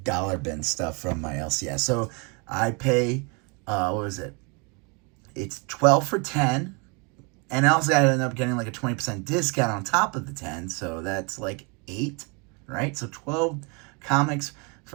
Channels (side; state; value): left; quieter; 31.7 dB